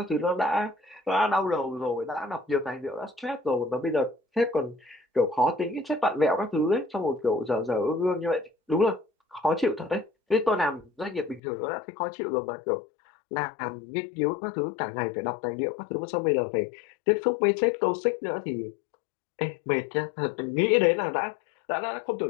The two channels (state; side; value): drops out; right; at 11.4 s